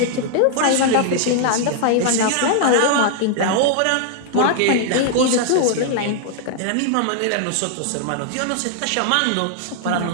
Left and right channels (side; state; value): both; different; correlation 0.00